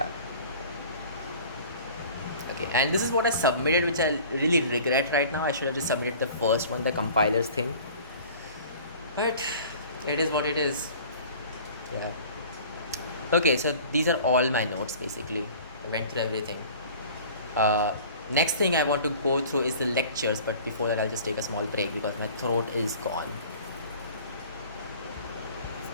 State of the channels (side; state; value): both; inverted; correlation -0.45